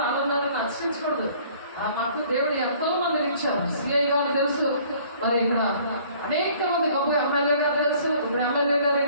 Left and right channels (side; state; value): both; inverted; correlation -0.55